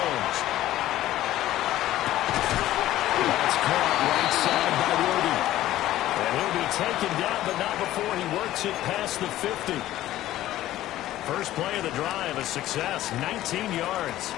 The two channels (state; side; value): quieter; right; 14.4 dB